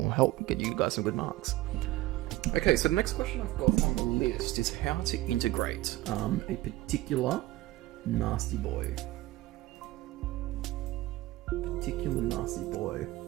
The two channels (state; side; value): quieter; left; 17.7 dB